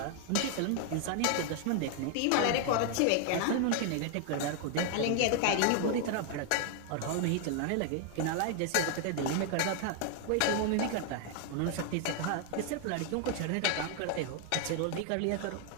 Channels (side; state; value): both; different; correlation 0.00